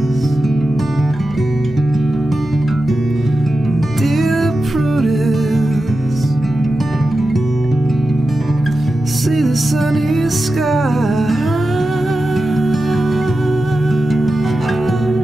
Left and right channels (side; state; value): both; normal; correlation 0.91